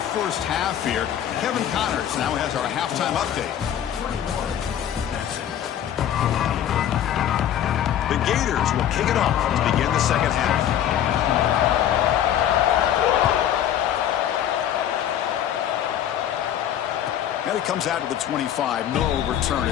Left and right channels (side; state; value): right; quieter; 10.5 dB